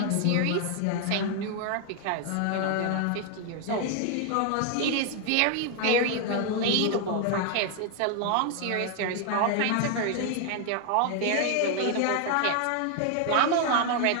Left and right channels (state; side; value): different; both; correlation 0.00